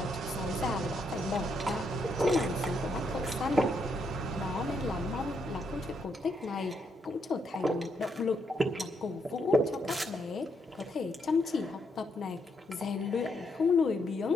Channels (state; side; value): normal; both; correlation 0.77